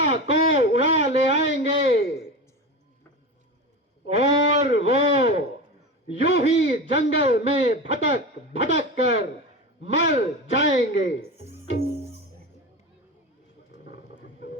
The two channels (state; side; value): normal; both; correlation 0.25